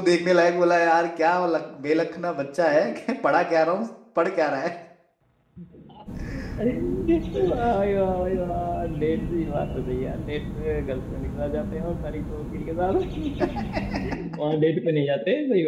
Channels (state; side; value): identical; both; correlation 1.00